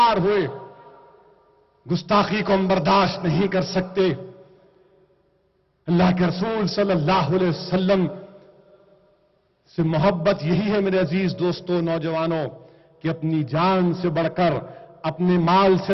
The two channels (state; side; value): identical; both; correlation 1.00